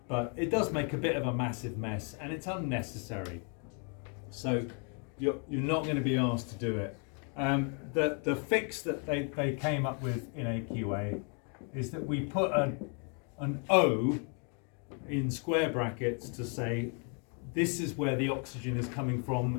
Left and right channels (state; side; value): quieter; right; 39.7 dB